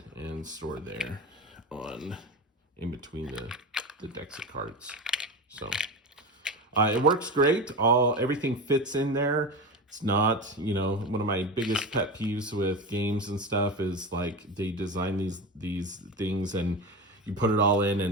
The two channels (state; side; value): normal; both; correlation 0.23